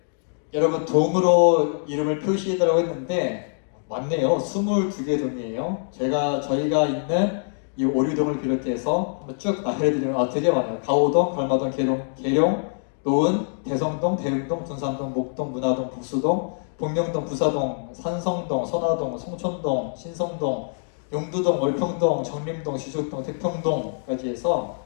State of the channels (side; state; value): right; silent; digital silence